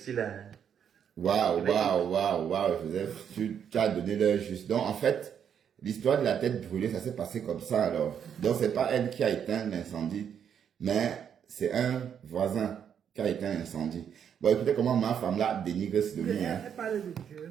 là. Waouh. Tu as donné l'heure juste. Donc, en fait, l'histoire de la tête brûlée, ça s'est passé comme ça alors. Donc, c'est pas elle qui a éteint l'incendie, mais c'est un voisin qui a éteint l'incendie. Bon, écoutez comment ma femme là dénigre ce demi. Hein. Elle parle de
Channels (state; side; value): quieter; left; 8.3 dB